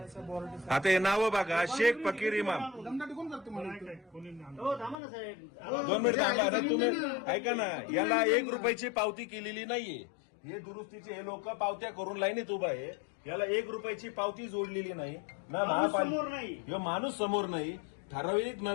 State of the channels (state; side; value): drops out; right; at 5.0 s